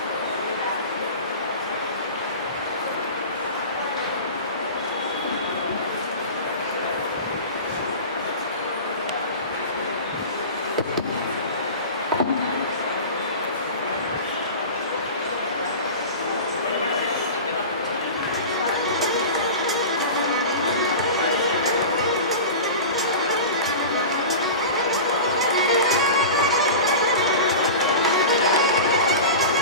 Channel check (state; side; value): inverted; both; correlation -0.32